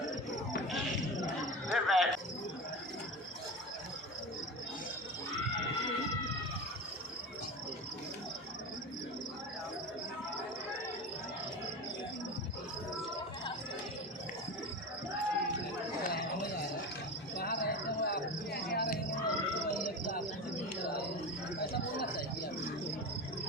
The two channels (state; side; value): normal; both; correlation 0.26